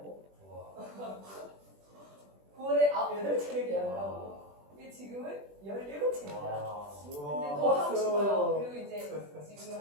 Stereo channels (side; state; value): left; late; 20 ms